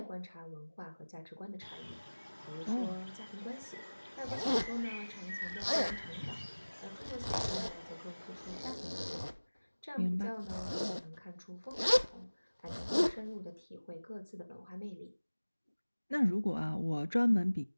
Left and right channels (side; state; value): both; inverted; correlation -1.00